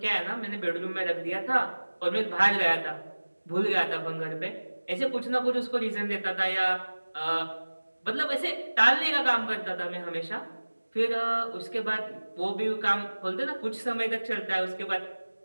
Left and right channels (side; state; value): both; inverted; correlation -1.00